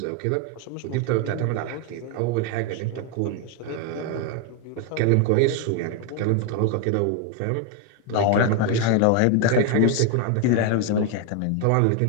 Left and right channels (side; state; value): both; different; correlation 0.01